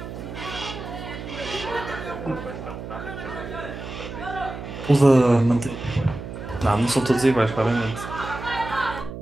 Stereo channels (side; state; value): right; noise; hum, 9 dB below the sound